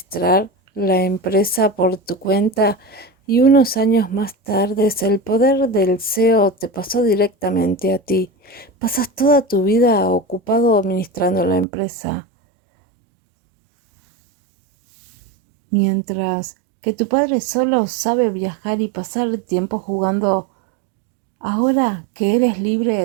la empresa por tu cuenta y unos años más tarde el poder del CEO te pasó directamente a ti. Pasas toda tu vida ocupado administrando la empresa, mientras que tu padre solo sabe viajar y pasar tiempo jugando. Ahora que eres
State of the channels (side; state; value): left; drops out; at 11.7 s